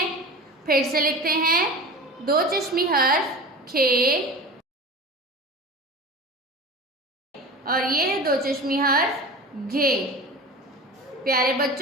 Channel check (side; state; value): both; normal; correlation 0.34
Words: फिर से लिखते हैं दो चश्मी हर्फ खे और ये है दो चश्मी हर्फ घे। प्यारे